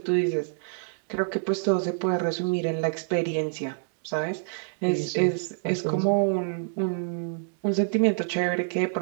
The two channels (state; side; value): silent; left; digital silence